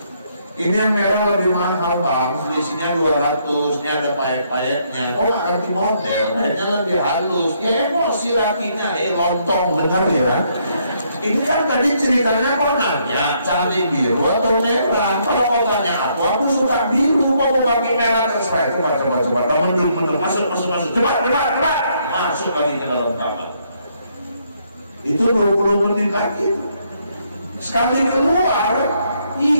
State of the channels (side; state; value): both; inverted; correlation -0.72